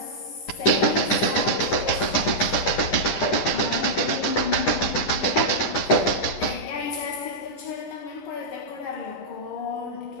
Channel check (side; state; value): right; late; 10 ms